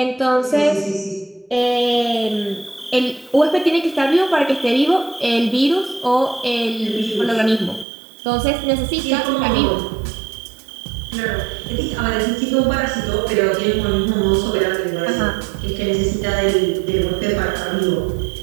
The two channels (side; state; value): left; drops out; at 7.9 s